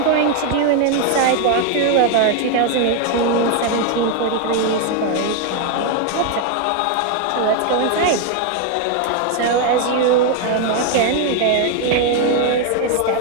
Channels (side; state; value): both; different; correlation 0.01